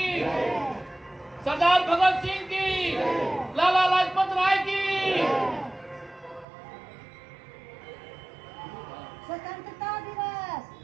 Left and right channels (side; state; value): left; drops out; at 6.5 s